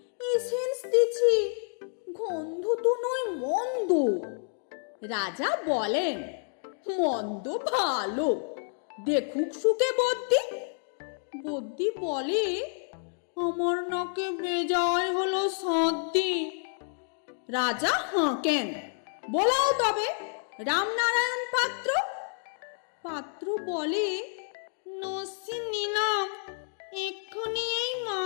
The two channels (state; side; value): silent; right; 58 dB below the other